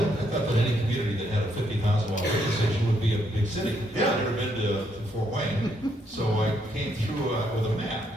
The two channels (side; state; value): both; normal; correlation 0.74